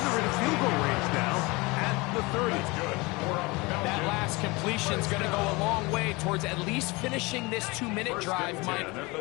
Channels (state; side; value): quieter; right; 24.7 dB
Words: they're in field goal range now at the 30. Good. That last completion's going to go a long way towards at least finishing this 2-minute drive, Mike,